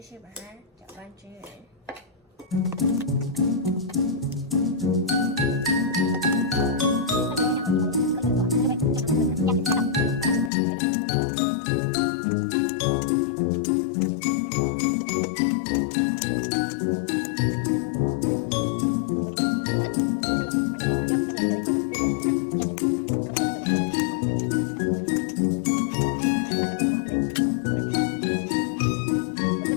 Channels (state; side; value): drops out; right; at 10.5 s